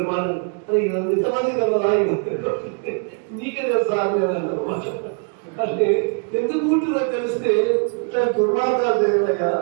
మనం ఇంతమంది కదా నీకే కదా సార్ అంటే ఎందుకు పుట్టినో తెలిస్తే ఇట్లా దుర్మార్గాలు తెలియదయా.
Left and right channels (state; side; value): quieter; left; 38.8 dB